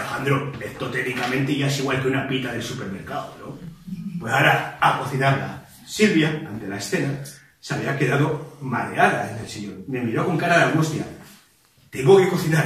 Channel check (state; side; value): identical; both; correlation 1.00